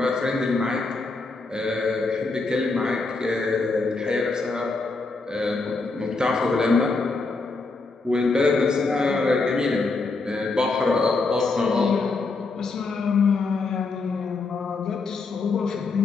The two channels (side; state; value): right; quieter; 3.8 dB